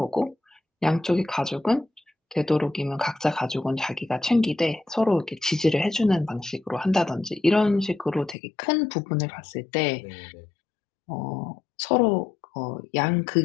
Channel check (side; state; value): right; drops out; at 8.3 s